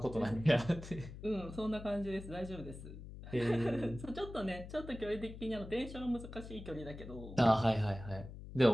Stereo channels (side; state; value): left; noise; hum, 12 dB below the sound